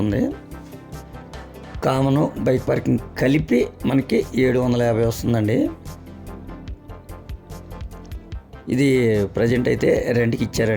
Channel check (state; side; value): identical; both; correlation 1.00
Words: కామను బైక్ పార్కింగ్ కలిపి మనకి 750 వస్తుందండి. ఇది ప్రజెంట్ అయితే రెంట్కి